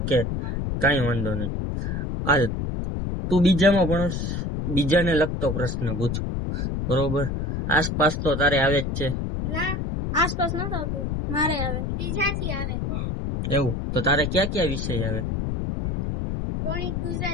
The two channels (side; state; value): left; noise; rumble, 2 dB below the sound